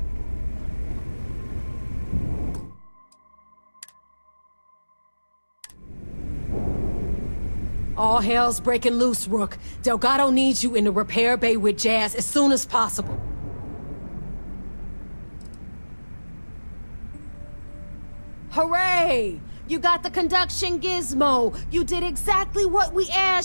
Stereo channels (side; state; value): both; inverted; correlation -1.00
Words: All hell's breaking loose, Rook. Delgado needs you in the repair bay with Jazz as soon as possible. Hooray! You got the conduction gizmo. You did exactly what we